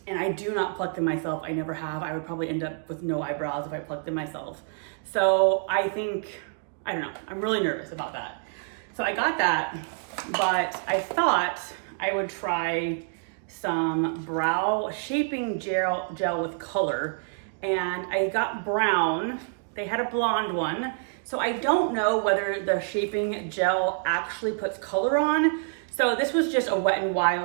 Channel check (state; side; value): silent; left; digital silence